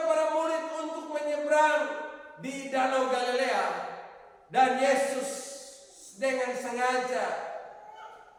para murid untuk menyeberang di Danau Galilea. Dan Yesus dengan sengaja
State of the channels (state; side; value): identical; both; correlation 1.00